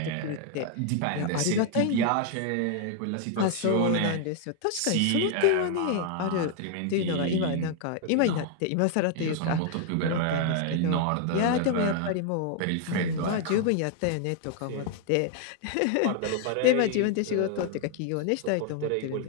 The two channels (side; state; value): both; different; correlation 0.00